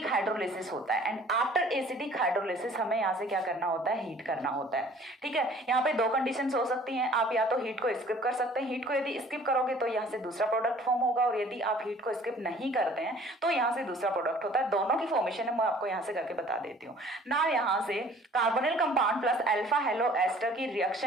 हाइड्रोलिसिस होता है. एंड आफ्टर एसिडिक हाइड्रोलिसिस हमें यहाँ से क्या करना होता है, हीट करना होता है. ठीक है, यहाँ पे दो कंडीशंस हो सकती हैं, आप या तो हीट को स्किप कर सकते हैं. हीट को यदि स्किप करोगे तो यहाँ से दूसरा प्रोडक्ट फॉर्म होगा, और यदि आप हीट को स्किप नहीं करते हैं तो यहाँ से दूसरा प्रोडक्ट होता है. दोनों की फॉर्मेशन है मैं आपको यहाँ से करके बता देती हूँ ना. यहाँ से carbonyl compound plus alpha halo ester की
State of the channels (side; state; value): both; normal; correlation 0.52